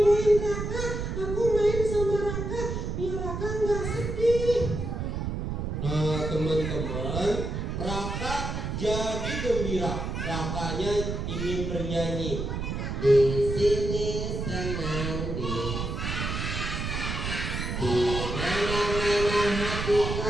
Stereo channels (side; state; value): right; noise; rumble, 3 dB below the sound